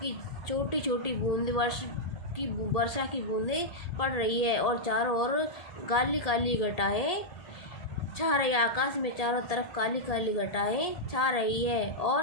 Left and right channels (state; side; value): late; right; 1.8 ms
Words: कि छोटी छोटी बूंद वर्षा की बूंदें पड़ रही है, और चारों ओर काली काली घटाएं छा रही है। आकाश में चारों तरफ काली काली घटाएं छा रही है,